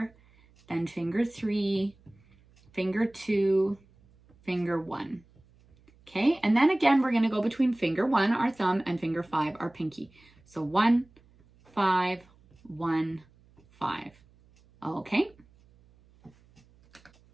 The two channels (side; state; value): right; noise; hum, 30 dB below the sound